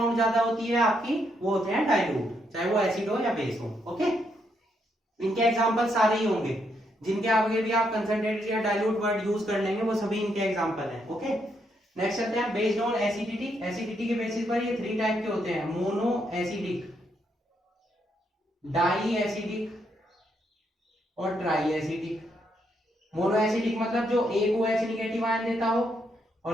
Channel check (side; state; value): both; normal; correlation 0.77